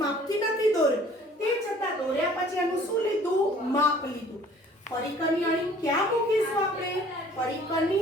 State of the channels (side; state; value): both; normal; correlation 0.54